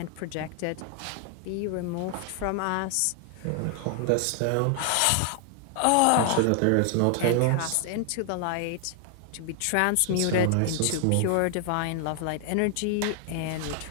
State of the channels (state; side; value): different; both; correlation 0.00